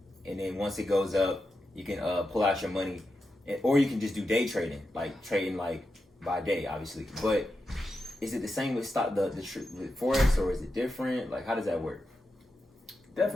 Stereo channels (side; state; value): both; normal; correlation 0.88